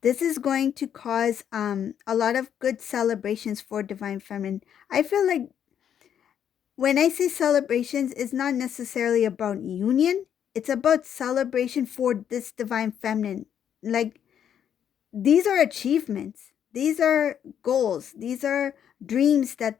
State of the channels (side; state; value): right; quieter; 9.0 dB